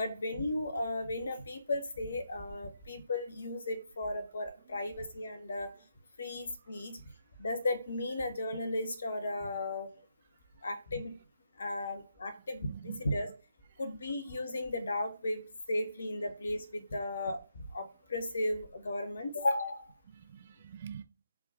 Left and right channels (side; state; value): both; inverted; correlation -0.81